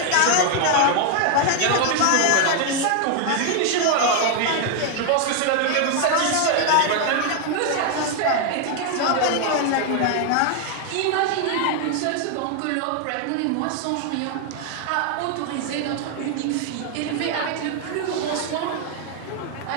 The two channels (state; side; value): different; both; correlation 0.00